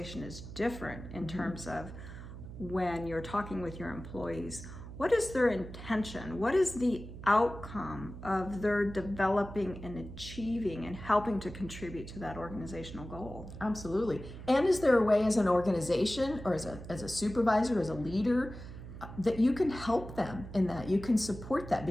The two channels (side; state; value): right; noise; hum, 12 dB below the sound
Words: is different in terms of when you're talking with your employees. What is their intention? What is the outcome of their developing and achieving and helping to contribute to that organizational goal? Absolutely. And is there a way as an organization or as a supervisor, as a leader, that you can help them in that, you can support that,